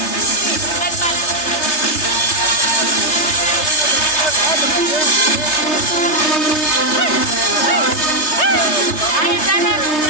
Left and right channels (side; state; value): right; late; 3.3 ms